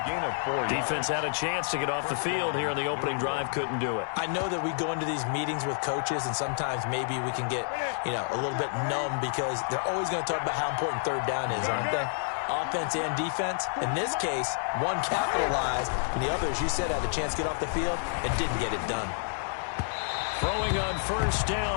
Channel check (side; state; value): right; silent; digital silence